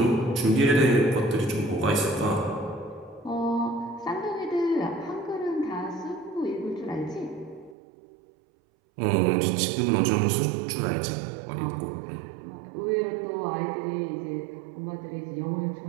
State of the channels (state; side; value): drops out; left; at 7.8 s